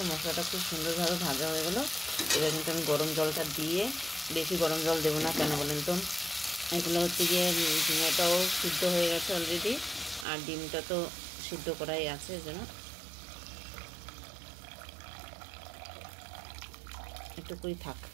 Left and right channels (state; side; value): drops out; left; at 10.2 s